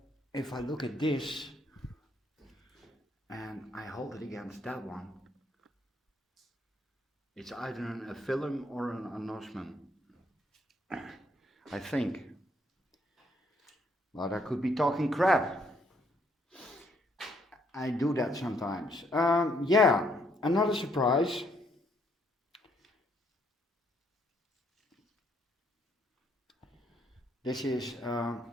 if I look at this and I hold it against that one, it's either an aphyllum or an anosmum, I think. But I could be talking crap. I do that sometimes. Yeah, another surprise. This is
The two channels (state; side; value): normal; both; correlation 0.70